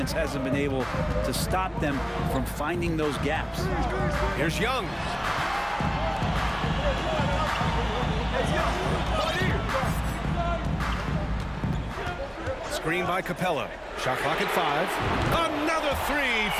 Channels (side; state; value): both; identical; correlation 1.00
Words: hasn't been able to stop them from finding those gaps. Here's Young. Screen by Capella. Shot clock at 5. Another 3